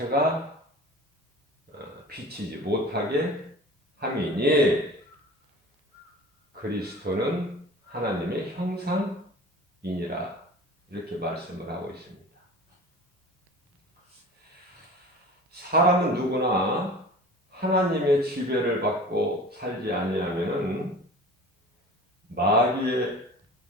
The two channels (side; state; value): both; normal; correlation 0.40